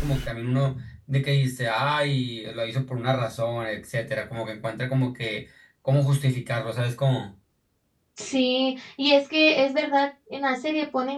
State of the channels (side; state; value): both; identical; correlation 1.00